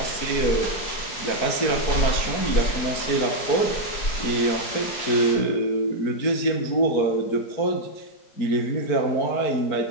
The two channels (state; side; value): late; right; 4.5 ms